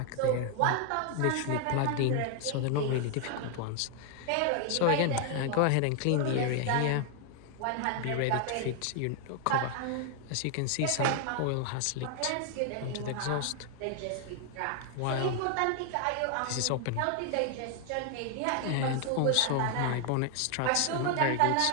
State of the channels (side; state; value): both; different; correlation 0.00